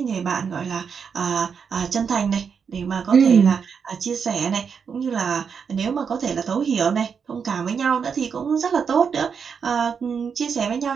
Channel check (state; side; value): quieter; left; 6.4 dB